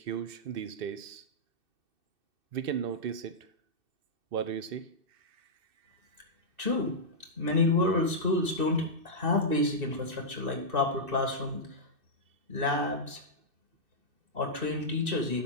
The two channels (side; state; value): left; late; 2.6 ms